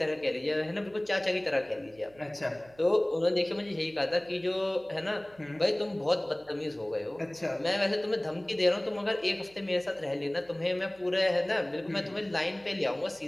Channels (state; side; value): noise; right; hum, 27 dB below the sound